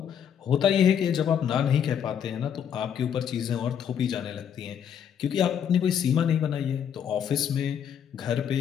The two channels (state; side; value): quieter; right; 8.5 dB